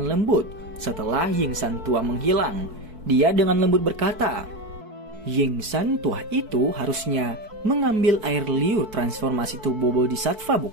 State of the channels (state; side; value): late; left; 4.6 ms